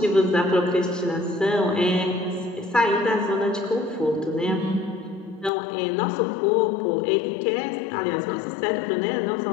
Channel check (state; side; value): drops out; right; at 5.5 s